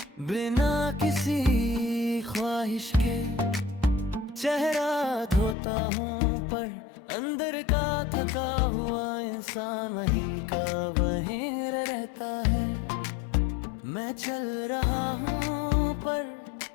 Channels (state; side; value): drops out; right; at 5.6 s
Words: बिना किसी ख्वाहिश के, चेहरा धोता हूँ पर अंदर का थका हुआ इंसान वहीं का वहीं रहता है। मैं चल रहा हूँ पर